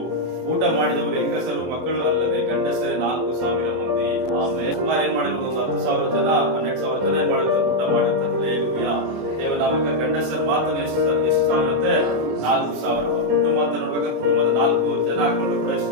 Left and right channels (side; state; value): left; late; 24 ms